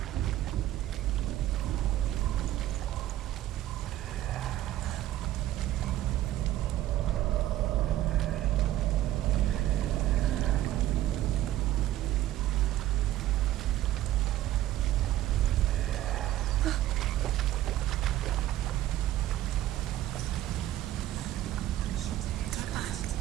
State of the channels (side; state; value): left; quieter; 13.8 dB